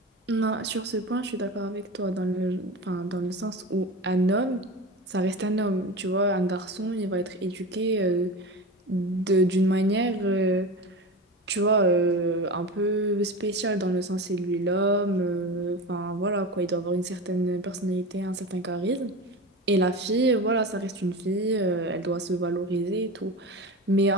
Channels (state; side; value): normal; both; correlation 0.27